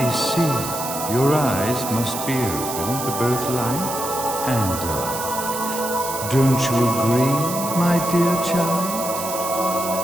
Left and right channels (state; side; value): noise; right; hiss, 7 dB below the sound